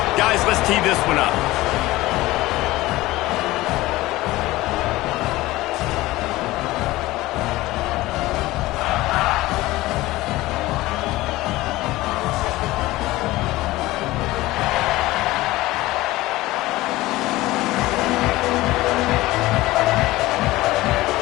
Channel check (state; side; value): quieter; right; 18.4 dB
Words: Guys, let's tee this one up.